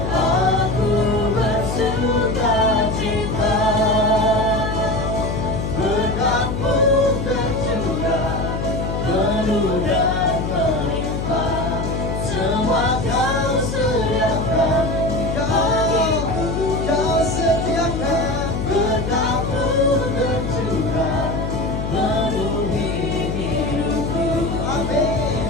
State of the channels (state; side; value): noise; left; hum, 3 dB below the sound